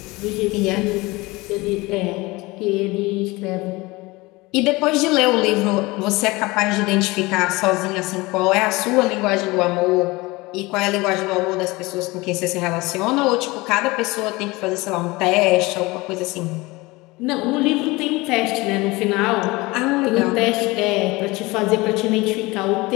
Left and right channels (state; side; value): quieter; right; 22.4 dB